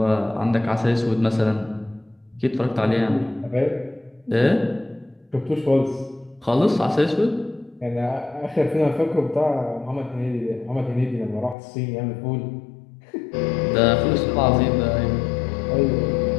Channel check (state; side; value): drops out; right; at 11.6 s